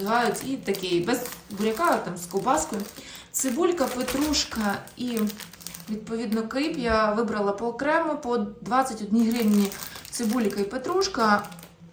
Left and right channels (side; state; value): both; identical; correlation 1.00